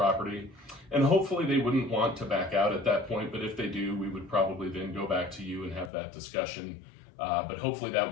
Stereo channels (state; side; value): drops out; right; at 5.9 s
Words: And hopefully they wouldn't want to back out at that point, but if they do, we would probably then go back to you and have that discussion. But hopefully that